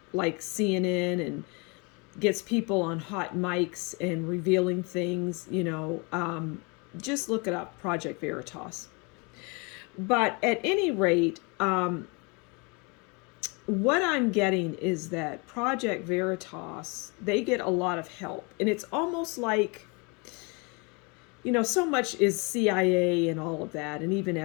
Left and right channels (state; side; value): quieter; right; 30.6 dB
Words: like CNN and gets people on hot mics and revealing things. Just look it up, Project Veritas. But at any rate, what I'm getting is that Project Veritas, they get a lot of help. And it's almost like, so much is CIA and all of that, and even